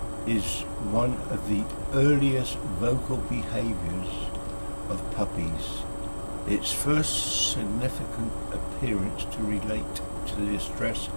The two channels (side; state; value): both; inverted; correlation -1.00